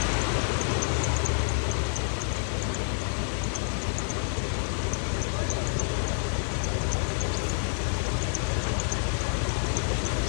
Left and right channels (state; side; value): silent; right; digital silence